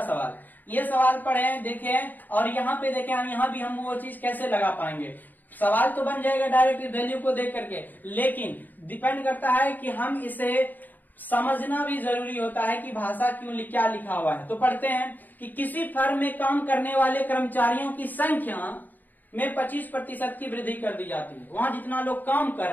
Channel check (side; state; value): right; late; 0.087 ms